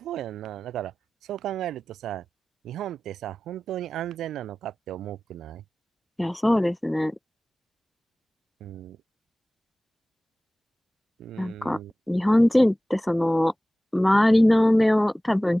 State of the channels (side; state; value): both; normal; correlation 0.97